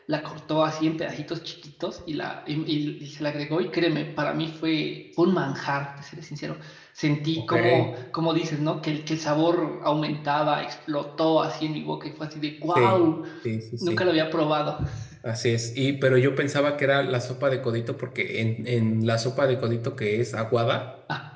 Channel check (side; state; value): both; identical; correlation 1.00